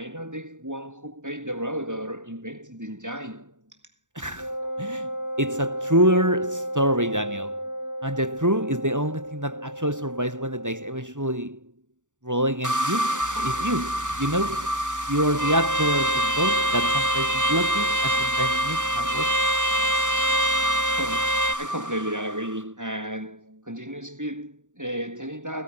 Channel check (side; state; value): left; late; 0.86 ms